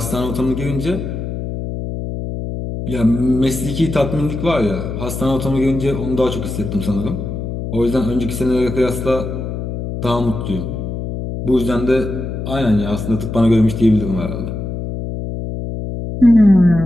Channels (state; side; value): noise; left; hum, 5 dB below the sound